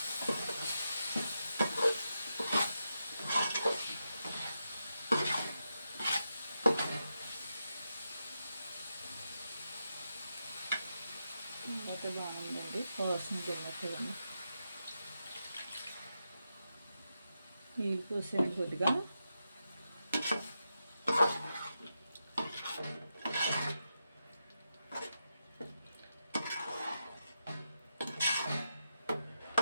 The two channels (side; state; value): both; inverted; correlation -0.87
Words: ఇంకా బాగుందండి. వాసన తిన్నట్టుగా నీళ్ళు పోసాను కొద్దిగా.